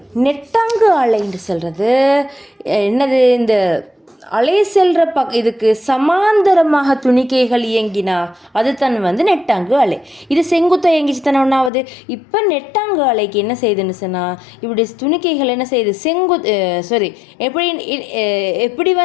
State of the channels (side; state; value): right; drops out; at 11.7 s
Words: நெட்டாங்கு அலைன்னு சொல்கிறது என்னது? இந்த அலை செல்கிற இதுக்கு சமாந்தரமாக துணிக்கைகள் இயங்கினா அது தன் நெட்டாங்கு அலை. இது செங்குத்தாக இயங்கிச்சு தானே ஒன்றாவது. இப்போ நெட்டாங்கு அலைக்கு என்ன செய்யுதுன்னு சொன்னால், இப்படி துணிக்கைகள் என்ன செய்யுது? எப்படி எப்படி